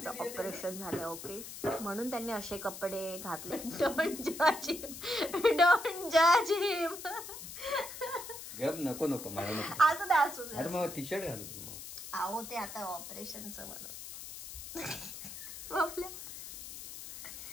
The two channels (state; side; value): noise; left; hiss, 11 dB below the sound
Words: ऑपरेशन झालं ओके म्हणून त्यांनी असे कपडे घातले. डोंट जज हिम. नको नको मला नको. असू दे असू दे. अरे मग टी शर्ट घालू. अहो ते आता ऑपरेशनचं म्हणून.